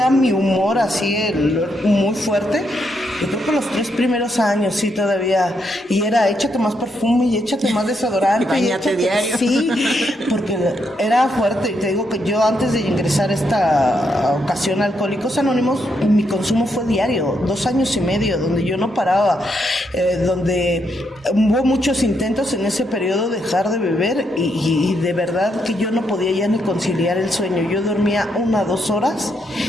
mi humor así muy fuerte, Yo creo que los 3 primeros años sí todavía, y era échate más perfume y échate más desodorante. Báñate diario. Sí, porque era fuerte. Y te digo que yo antes de ingresar a esta ocasión a Alcohólicos Anónimos, mi consumo fue diario, 2 años y medio, donde yo no paraba, donde hubo muchos intentos en ese periodo de dejar de beber y de verdad que yo no podía ya ni conciliar el sueño. Yo dormía 1 o 2 horas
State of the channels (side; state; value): both; normal; correlation 0.78